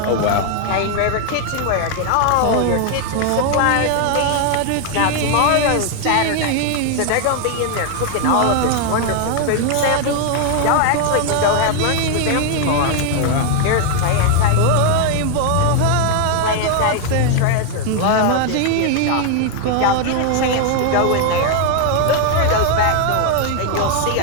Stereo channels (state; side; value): different; both; correlation 0.00